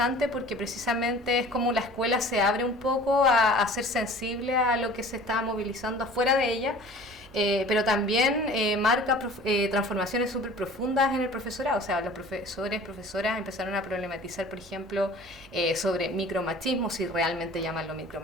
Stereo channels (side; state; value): both; normal; correlation 0.45